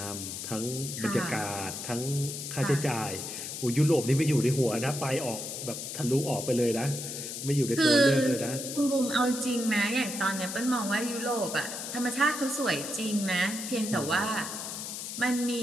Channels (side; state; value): left; noise; hiss, 7 dB below the sound